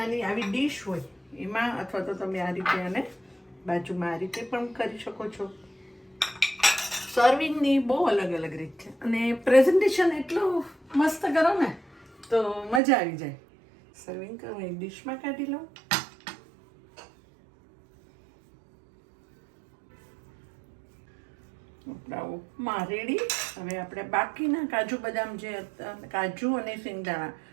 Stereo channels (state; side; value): drops out; left; at 12.8 s